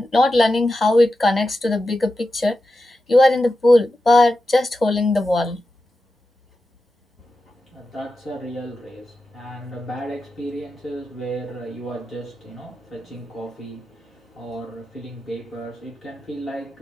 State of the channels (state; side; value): normal; both; correlation 0.91